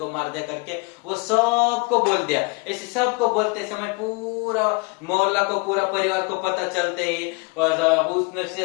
मार दिया करके वो सबको बोल दिया। ऐसे सबको बोलते समय पूरा मोहल्ला को, पूरा परिवार को पता चलते ही उसने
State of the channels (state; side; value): quieter; right; 28.5 dB